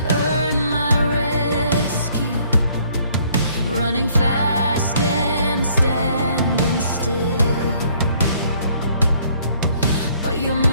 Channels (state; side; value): inverted; both; correlation -0.63